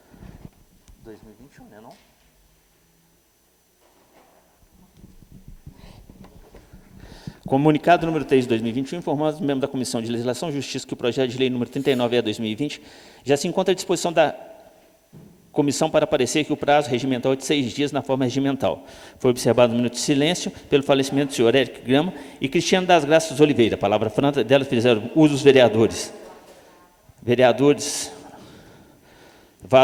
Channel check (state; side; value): identical; both; correlation 1.00